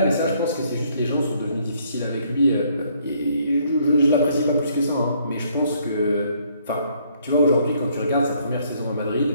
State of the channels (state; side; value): inverted; both; correlation -0.67